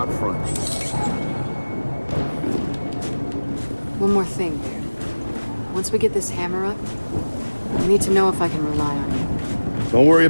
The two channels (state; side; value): inverted; both; correlation -1.00